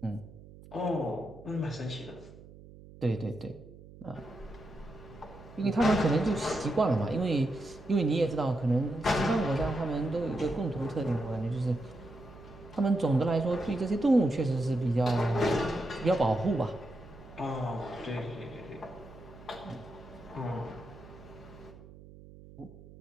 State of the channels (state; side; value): noise; right; hum, 19 dB below the sound